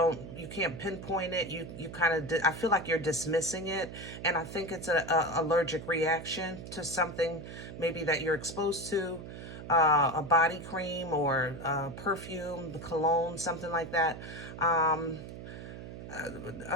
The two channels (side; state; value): right; noise; hum, 11 dB below the sound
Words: you can't pinpoint it, you kind of, I feel like you're dismissing it, and I think it's a allergic reaction to something maybe that you're exposed to, a body cream or perfume, cologne, something like that.